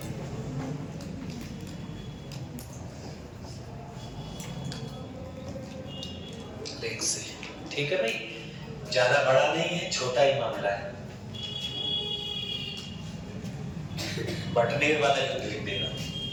लेग से। ठीक है भाई, ज्यादा बड़ा नहीं है, छोटा ही मामला है। बटनेर वाला युद्ध लिख देना।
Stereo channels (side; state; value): both; identical; correlation 1.00